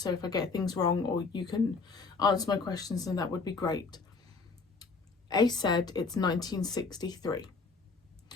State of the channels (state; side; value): quieter; right; 4.4 dB